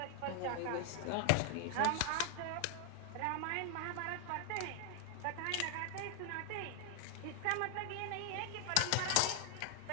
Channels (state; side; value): different; both; correlation 0.00